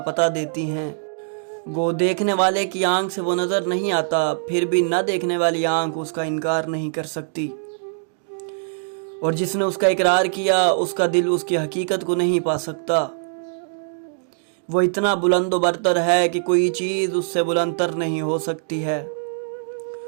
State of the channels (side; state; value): left; silent; digital silence